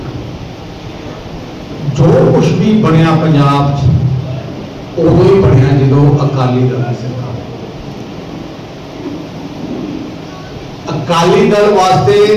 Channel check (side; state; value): both; identical; correlation 1.00